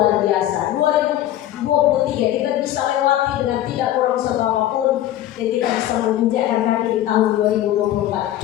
biasa. 2023 kita bisa lewati dengan tidak kurang apapun, dan kita bisa menginjakkan kaki di tahun 2024.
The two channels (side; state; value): right; quieter; 13.0 dB